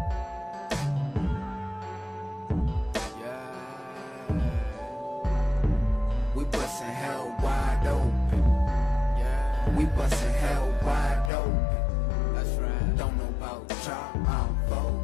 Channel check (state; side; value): drops out; right; at 11.3 s